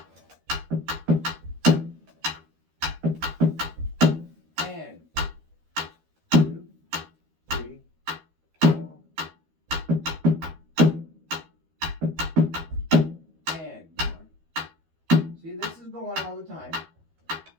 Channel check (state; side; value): late; left; 13 ms